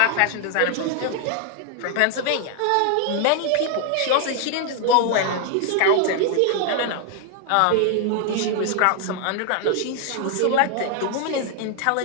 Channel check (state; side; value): different; both; correlation 0.00